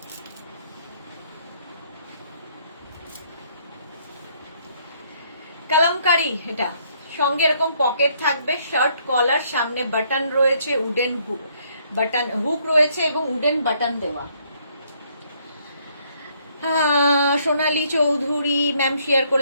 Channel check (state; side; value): inverted; both; correlation -0.68